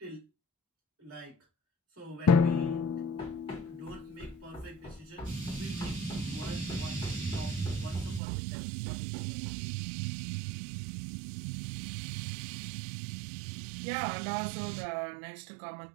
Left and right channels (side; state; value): left; drops out; at 8.2 s